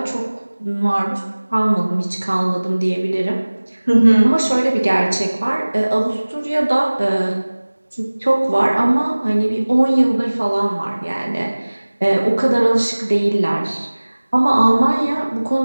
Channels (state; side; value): inverted; both; correlation -1.00